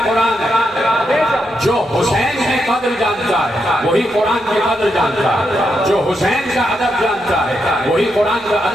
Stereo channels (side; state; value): both; normal; correlation 0.82